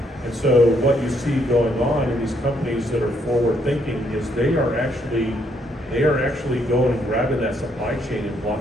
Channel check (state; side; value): normal; both; correlation 0.72